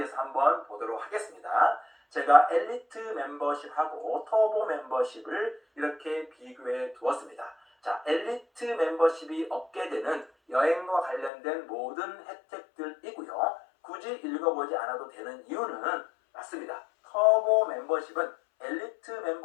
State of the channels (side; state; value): right; drops out; at 11.3 s